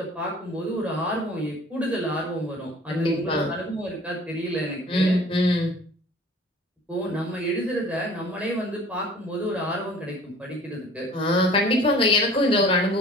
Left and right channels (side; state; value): both; normal; correlation 0.48